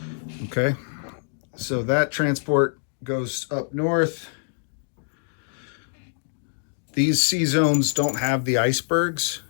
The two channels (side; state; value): right; silent; digital silence